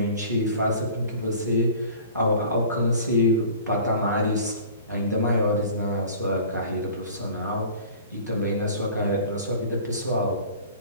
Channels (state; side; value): inverted; both; correlation -0.44